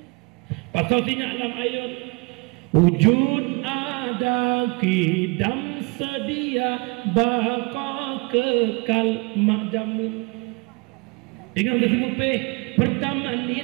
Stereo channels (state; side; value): quieter; left; 29.7 dB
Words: pasal tinyak dalam ayat wujud ada kidam sedia baka kekal mak jamun dengan kesemupeh pertama